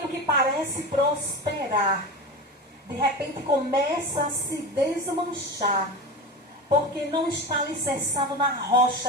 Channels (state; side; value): normal; both; correlation 0.26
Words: que parece prosperar, de repente começa a se desmanchar, porque não está alicerçado na